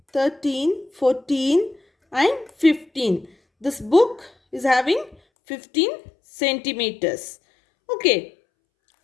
13, 14 and 15. This book is having 15 centimeters. Okay.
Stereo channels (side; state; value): right; drops out; at 5.2 s